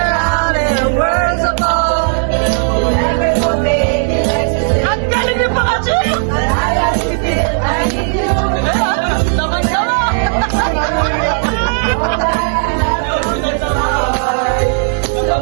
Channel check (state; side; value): silent; left; digital silence